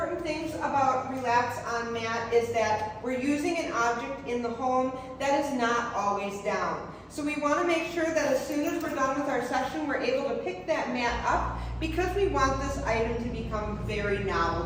things about relax on mat is that we're using an object in the home that is not always down. So we want to make sure that as soon as we're done with our session, we're able to pick that mat up because we want this item to become very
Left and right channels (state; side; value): identical; both; correlation 1.00